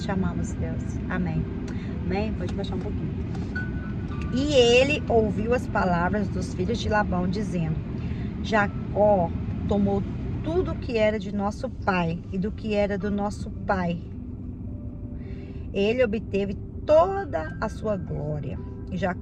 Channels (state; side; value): identical; both; correlation 1.00